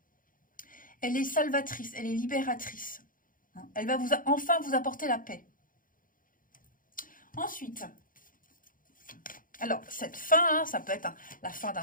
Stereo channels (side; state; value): right; late; 0.40 ms